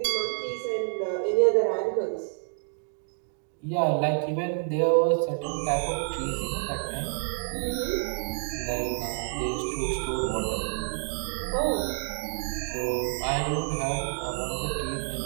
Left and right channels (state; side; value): silent; left; 59 dB below the other